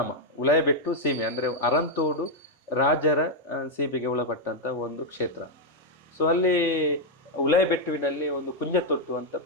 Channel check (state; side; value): normal; both; correlation 0.00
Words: ಉಲಾಯಿಬೆಟ್ಟು ಸೀಮೆ ಅಂದರೆ ಅರಂತೋಡು ರಾಜರ ಸೀಮೆಗೆ ಒಳಪಟ್ಟಂತ ಒಂದು ಕ್ಷೇತ್ರ. ಸೊ ಅಲ್ಲಿ ಉಲಾಯಿಬೆಟ್ಟುವಿನಲ್ಲಿ ಒಂದು ಕುಂಜತೊಟ್ಟು ಅಂತ